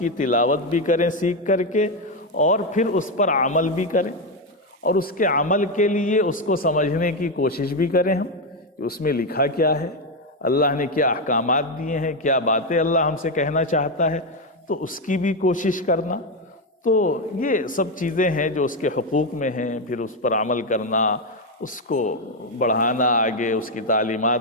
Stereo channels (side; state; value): both; normal; correlation 0.07